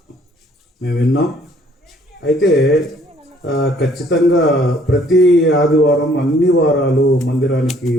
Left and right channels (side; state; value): both; normal; correlation 0.61